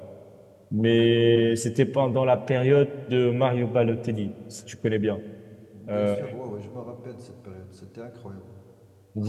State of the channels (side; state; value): both; identical; correlation 1.00